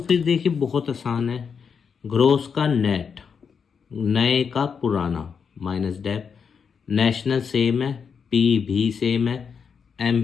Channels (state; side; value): quieter; right; 6.4 dB